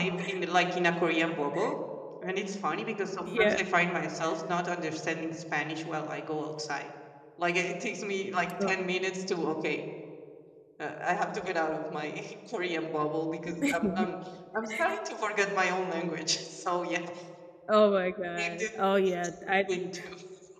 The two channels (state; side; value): identical; both; correlation 1.00